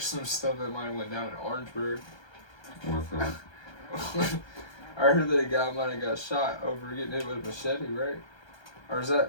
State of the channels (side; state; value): right; late; 1.3 ms